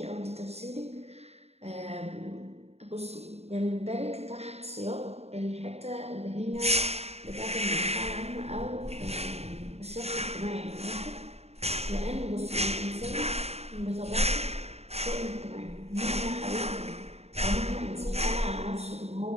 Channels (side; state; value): left; late; 0.30 ms